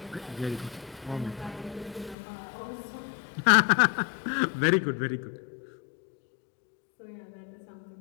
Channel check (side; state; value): right; drops out; at 2.1 s